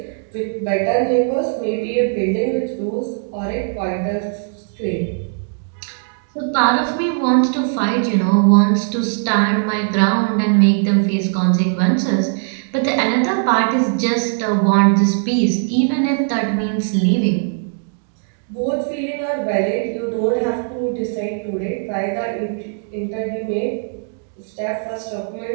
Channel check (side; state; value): left; silent; 60 dB below the other